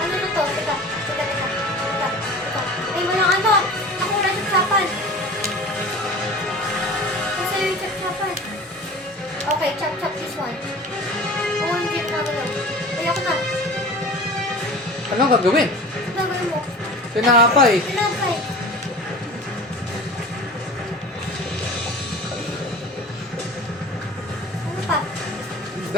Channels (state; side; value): normal; both; correlation 0.39